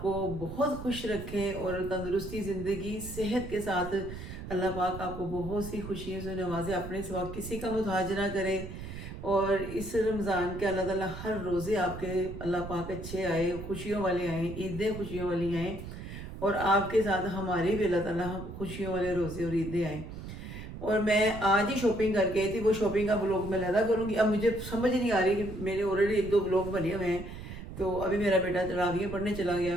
बहुत खुश रखे और तंदुरुस्ती ज़िंदगी सेहत के साथ अल्लाह पाक आपको बहुत सी खुशियों से नवाजे, अपने सिवा किसी का मुताज ना करे। और इस रमज़ान के अल्लाह ताला हर रोज़े आपके अल्लाह पाक अच्छे आए, खुशियों वाले आएँ, ईदें खुशियों वाली आएँ और आपके साथ हमारे भी अल्लाह ताला खुशियों वाले रोज़े और ईदें आएँ। और मैं आज ही शॉपिंग करके आई थी, वो शॉपिंग का व्लॉग मैं लगा करूँगी। अब मुझे समझ नहीं आ रही कि मेरे ऑलरेडी 1-2 व्लॉग बने हुए हैं। तो अभी मेरा बेटा तरावियाँ पढ़ने चला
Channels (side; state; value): right; noise; rumble, 10 dB below the sound